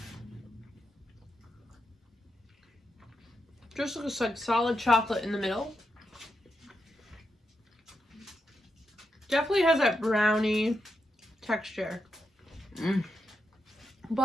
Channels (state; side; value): normal; both; correlation 0.84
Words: Just looks like solid chocolate in the middle. Definitely has that brownie texture.